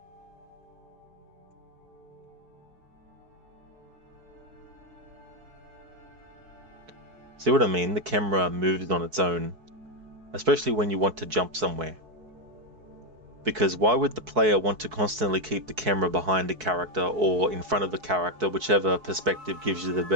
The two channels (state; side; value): late; left; 4.6 ms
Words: See what I mean? The camera moves on its own, especially when you want to jump somewhere. Because why would the player want to constantly keep the camera behind a character or in front of a character, whichever perspective gives you the